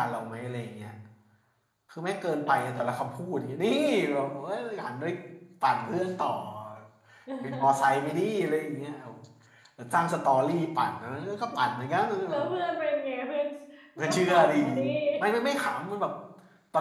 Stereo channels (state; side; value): identical; both; correlation 1.00